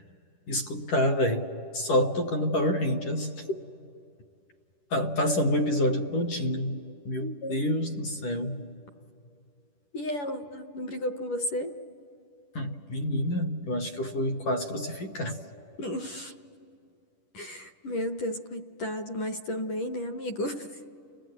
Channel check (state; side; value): late; right; 10 ms